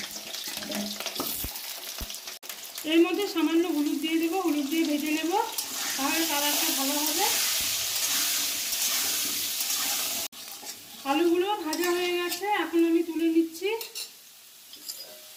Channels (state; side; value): identical; both; correlation 1.00